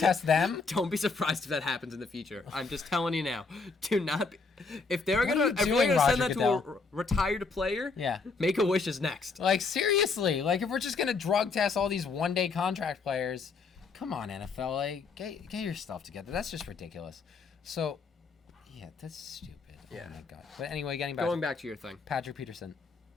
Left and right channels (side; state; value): right; quieter; 4.4 dB